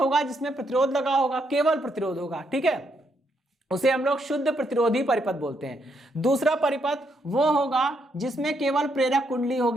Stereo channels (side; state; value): both; normal; correlation 0.76